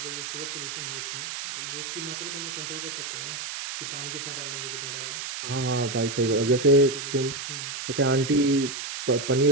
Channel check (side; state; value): right; noise; hiss, 6 dB below the sound